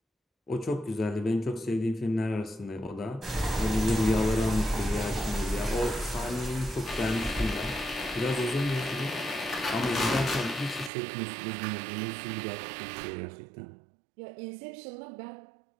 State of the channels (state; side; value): drops out; left; at 10.9 s